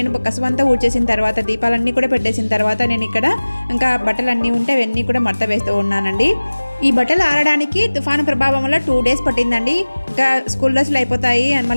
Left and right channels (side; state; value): both; inverted; correlation -1.00